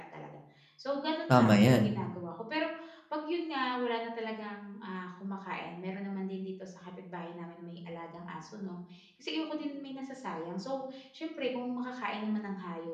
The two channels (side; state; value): both; identical; correlation 1.00